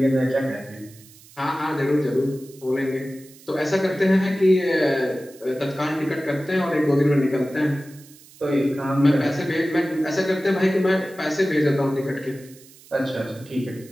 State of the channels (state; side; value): noise; right; hiss, 23 dB below the sound